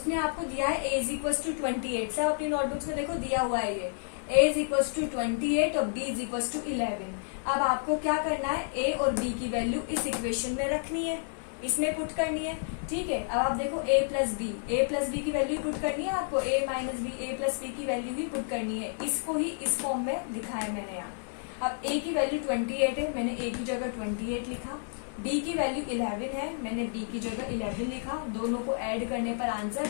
आपको दिया है ए इज इक्वल टू 28। सब अपनी नोटबुक्स में देखो दिया हुआ है ये ए इज इक्वल टू 28 और बी इज इक्वल टू 11। अब आपको क्या करना है, ए और बी की वैल्यू इस इक्वेशन में रखनी है, इसमें पुट करनी है। ठीक है, अब आप देखो ए प्लस बी की वैल्यू पुट करनी है आपको, ए माइनस बी ए प्लस बी की वैल्यू ही पुट करनी है। इसको ही इस फॉर्म में लिखा है मैंने यहाँ। अब ए की वैल्यू 28 है, मैंने ए की जगह 28 लिखा। बी की वैल्यू 11 है, मैंने बी की जगह 11 लिखा। दोनों को ऐड करने पर आंसर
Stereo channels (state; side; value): silent; right; digital silence